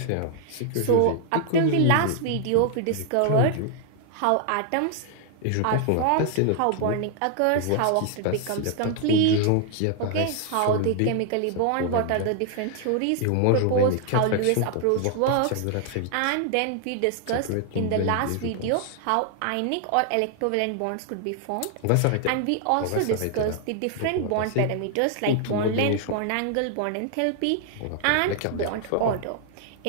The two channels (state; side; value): different; both; correlation 0.00